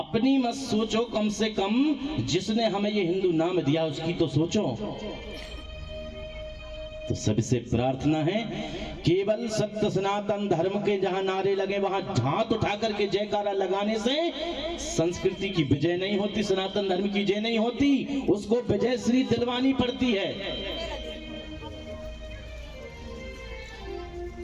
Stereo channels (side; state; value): both; identical; correlation 1.00